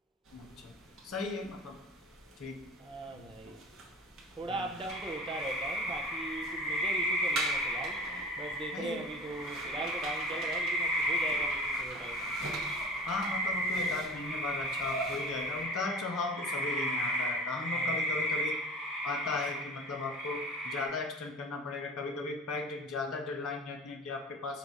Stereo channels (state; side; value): normal; both; correlation 0.38